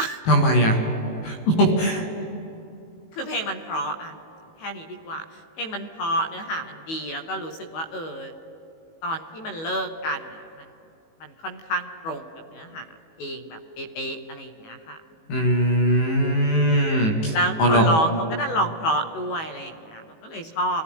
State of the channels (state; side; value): late; right; 19 ms